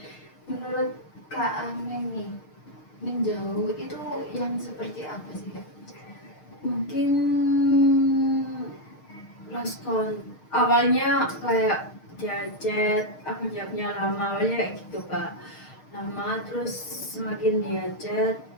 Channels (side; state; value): right; late; 6.5 ms